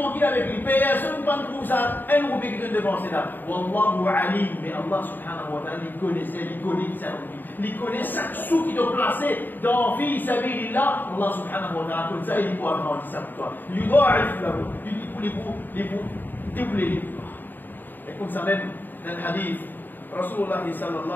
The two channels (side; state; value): right; late; 0.091 ms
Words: avec lui. Personne ne prend pour ça. Un roupie qui te dépense là. Wallahu alim. Mais Allah subhanahu wa ta'ala, il connaissait, il connaît ça roupie. Il connaît chaque sou qui doit placer dans fi sabilillah. Allah subhanahu wa ta'ala, comme ça, il peut agrandir ça pour toi. Il doit doubler les pouvoirs. Et comme ça même, dans le hadith, Rasulullah